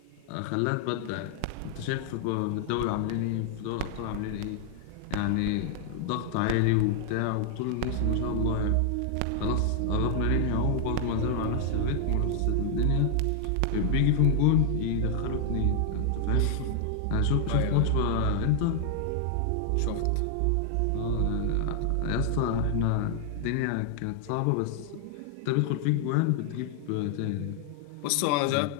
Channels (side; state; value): both; different; correlation 0.00